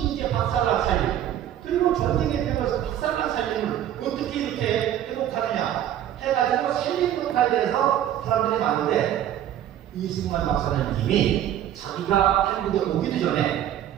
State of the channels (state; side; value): quieter; left; 11.3 dB